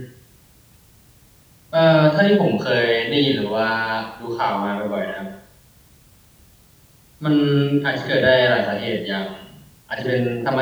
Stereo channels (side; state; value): both; identical; correlation 1.00